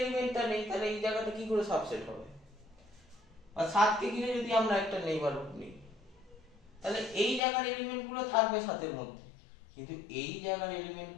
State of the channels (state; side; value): drops out; right; at 7.4 s